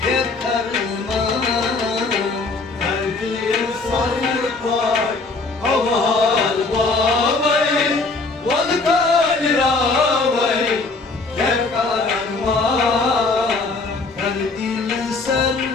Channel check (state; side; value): quieter; right; 3.7 dB